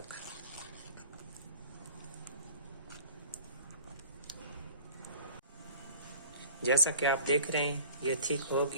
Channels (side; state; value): both; inverted; correlation -0.46